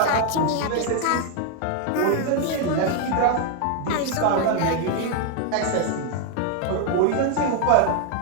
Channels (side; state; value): both; different; correlation 0.01